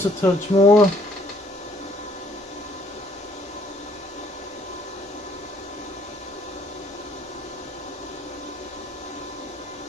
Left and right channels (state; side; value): normal; both; correlation 0.63